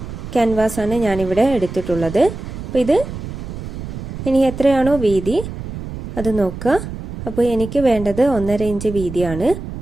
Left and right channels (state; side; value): noise; right; rumble, 9 dB below the sound